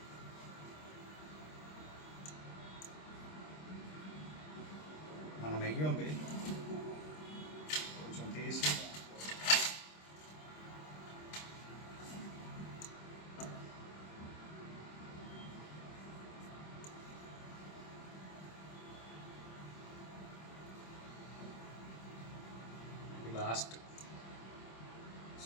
మన నెయ్యి ఉంది, కొంచెం తీసి లాస్ట్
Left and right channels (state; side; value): late; right; 26 ms